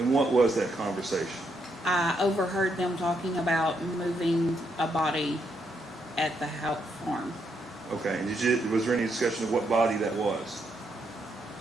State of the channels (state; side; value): normal; both; correlation 0.78